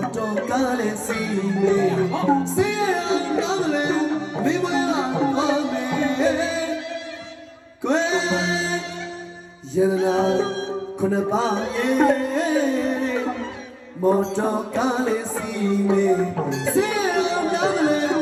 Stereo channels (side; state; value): both; identical; correlation 1.00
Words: တော်ကားလေးစီမေစီရနာမလဲမိမရပါမေကွယ်ယရနာခုနပါရဲ့မော်တော်ကားလေးစီမေစီရနာမလဲ